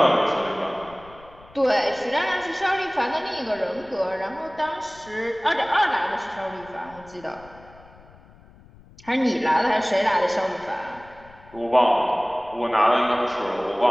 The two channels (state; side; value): noise; left; rumble, 24 dB below the sound